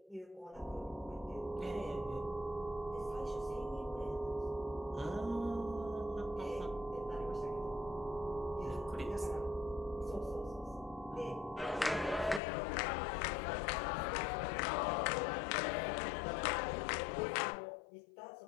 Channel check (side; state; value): right; drops out; at 12.4 s